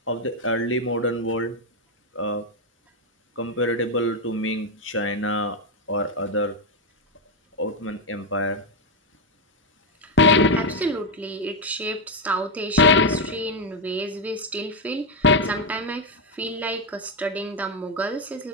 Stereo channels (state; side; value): normal; both; correlation 0.04